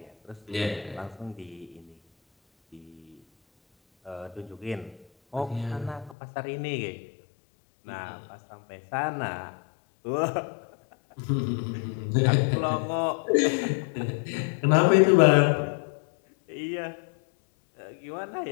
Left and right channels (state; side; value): drops out; right; at 6.2 s